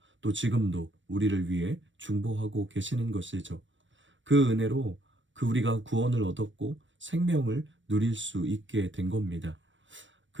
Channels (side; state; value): left; late; 0.55 ms